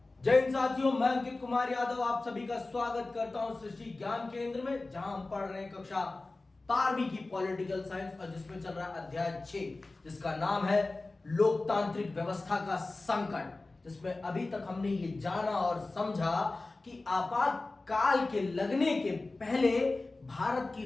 जय हिंद साथियों, मैं अंकित कुमार यादव आप सभी का स्वागत करता हूं सृष्टि ज्ञान केंद्र में, जहां हम पढ़ रहे हैं कक्षा 12वीं की पॉलिटिकल साइंस और जिसमें चल रहा है अध्याय 6, जिसका नाम है लोकतांत्रिक व्यवस्था का संकट। जिसमें अभी तक हमने ये जाना और समझा कि आपातकाल के लगने के पहले भारत की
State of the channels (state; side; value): quieter; right; 3.2 dB